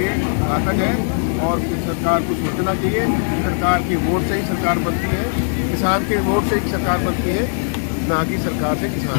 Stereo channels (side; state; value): right; silent; 66 dB below the other